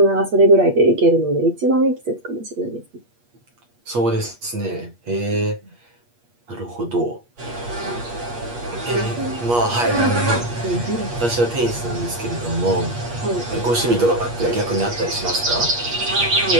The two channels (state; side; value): late; left; 8.4 ms